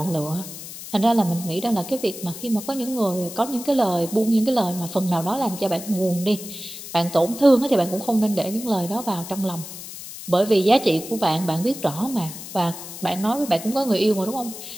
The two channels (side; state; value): left; noise; hiss, 12 dB below the sound